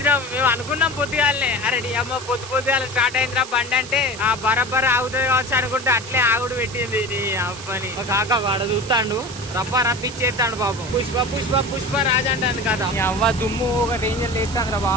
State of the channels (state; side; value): noise; right; hiss, 14 dB below the sound